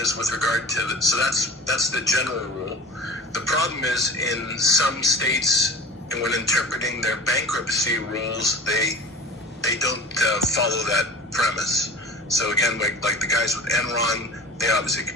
with regard to so that's the general rule. The problem is in some states, and when interpreting their bankruptcy rules, they don't follow that premise. So again, like the guys with Enron, they obviously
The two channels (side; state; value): both; normal; correlation 0.38